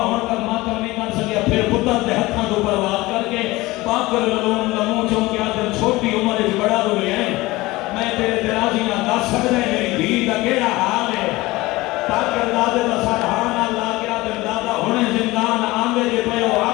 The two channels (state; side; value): quieter; right; 20.1 dB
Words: ہونے کا ماتم نہیں کر سکیا پھر پتر دے ہتھاں تو برباد کر کے بات کر لون لموں چوں کیا دل چھوٹی عمر وچ بڑا ہو گئے ہیں میں تیرے درازی نہ دس سکدا میری دھی دا کیڑا حال ہے تاکہ دادے دا سرحان اللہ کیا دل دادا ہونے زندان آنگے جے پہ وہ